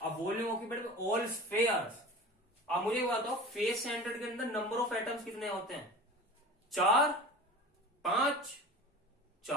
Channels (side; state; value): both; normal; correlation 0.36